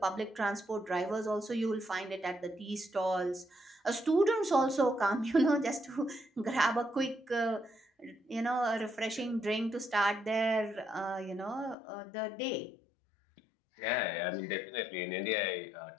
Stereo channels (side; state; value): right; drops out; at 11.8 s